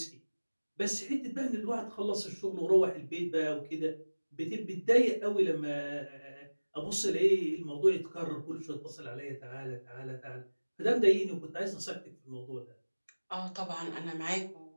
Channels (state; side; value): inverted; both; correlation -1.00